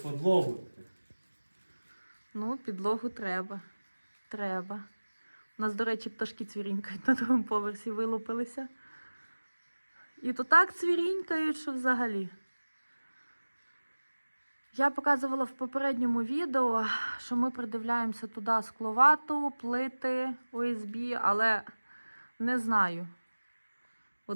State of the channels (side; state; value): both; inverted; correlation -1.00